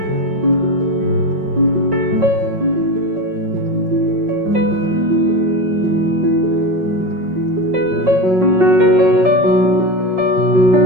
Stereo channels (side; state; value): left; late; 5.5 ms